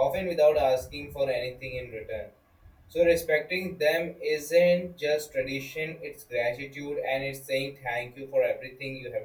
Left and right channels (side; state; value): both; identical; correlation 1.00